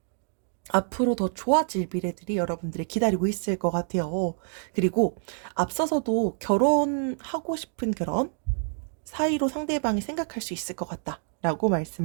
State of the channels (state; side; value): silent; left; 55 dB below the other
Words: 앞으로 더 좋아질 미래들이 여러분들이 기다리고 있을 것 같아요. 그리고 앞서서도 결혼하고 싶은 그런 사이로 상대방이 생각할 수 있을 것 같다라고